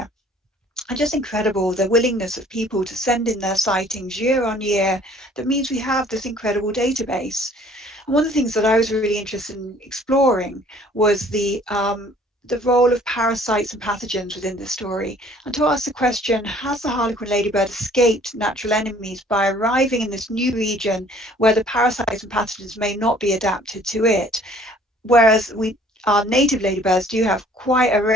And just incredible, the willingness of people to send in their sightings year on year. That means we have this incredible database. And one of the things that I was really interested in exploring was the the role of parasites and pathogens within the story, and to ask the question, has the harlequin ladybird escaped natural enemies by arriving in this new region where the parasites and pathogens may not be adapted to it? Whereas our native ladybirds do have quite a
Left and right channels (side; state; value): both; normal; correlation 0.55